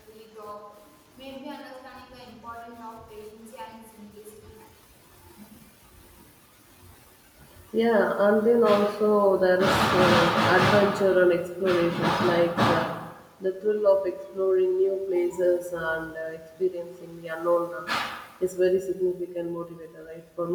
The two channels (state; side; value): identical; both; correlation 1.00